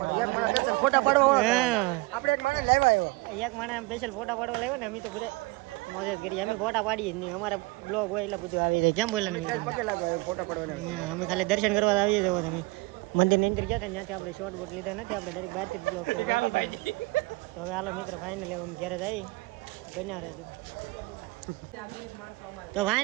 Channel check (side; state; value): left; quieter; 24.9 dB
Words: એક માણસ સ્પેશિયલ ફોટા પાડવા આપણે એક માણસ લાવ્યા આવ્યો એક માણસ સ્પેશિયલ ફોટા પાડવા લાવ્યો ને. અમે તો બધા મોજ જ કરીએ. અમે ફોટા પાડીએ જ નહીં. અમારા બ્લોગ હોય એટલે બધું આવી જાય. કેમ બોલે ફોટા પાડવા અમે ખાલી દર્શન કરવા આવીએ જવો. તમે મંદિર ની અંદર ગયા હતા ત્યાંથી આપણે શોર્ટ બોટ લીધા નથી. આપણે ડાયરેક્ટ બહારથી બ્લોગ કરી તો હવે હાલો મિત્ર ફાઇનલી અમે ઘરે જઈ બન્યા રહેજો. તો